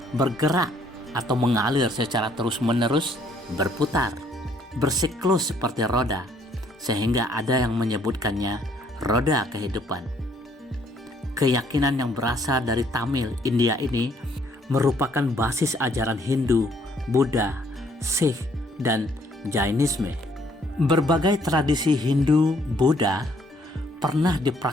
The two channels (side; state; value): both; normal; correlation 0.65